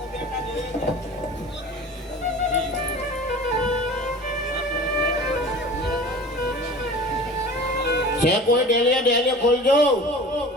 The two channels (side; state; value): both; normal; correlation 0.39